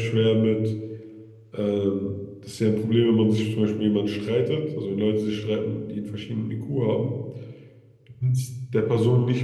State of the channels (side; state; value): both; identical; correlation 1.00